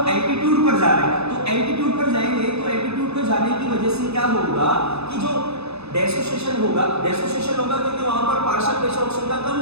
एल्टीट्यूड पर जा रहे हैं तो एल्टीट्यूड पर जाएंगे तो एल्टीट्यूड पर जाने की वजह से क्या होगा कि जो डेसोसिएशन होगा क्योंकि वहां पर पार्शियल प्रेशर ऑक्सीजन का कम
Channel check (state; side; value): late; left; 0.79 ms